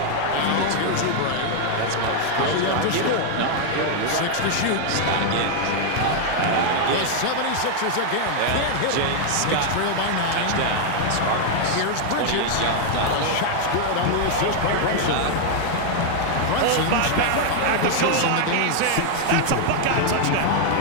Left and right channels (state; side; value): different; both; correlation 0.00